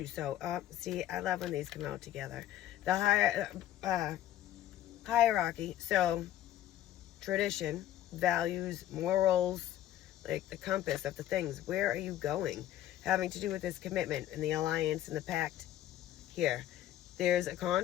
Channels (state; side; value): quieter; right; 12.7 dB